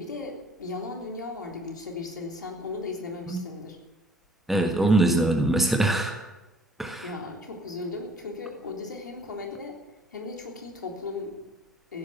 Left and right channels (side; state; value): both; normal; correlation 0.58